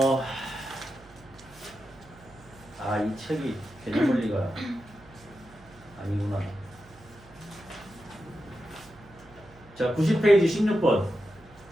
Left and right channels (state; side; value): noise; right; hum, 24 dB below the sound